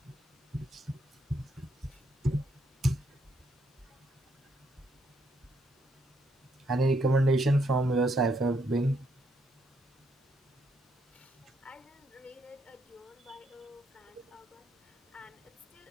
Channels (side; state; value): both; normal; correlation 0.74